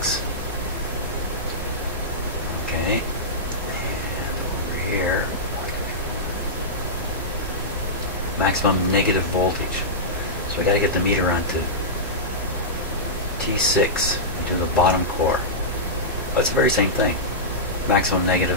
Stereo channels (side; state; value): both; normal; correlation -0.13